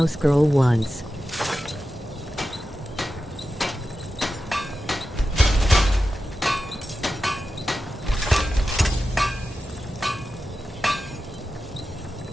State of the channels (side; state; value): both; normal; correlation 0.92